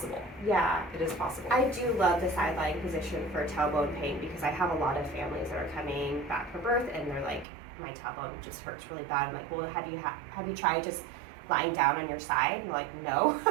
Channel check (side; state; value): left; drops out; at 7.5 s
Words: Yeah. It is possible. I do love the sideline position for tailbone pain, because I have a lot of families that are coming back from birth and they're like, my tailbone just hurts really bad. I'm like, well, have you tried just lying down on your side? And like, no.